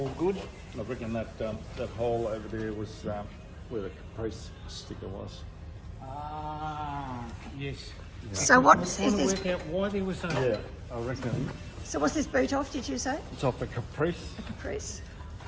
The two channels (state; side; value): identical; both; correlation 1.00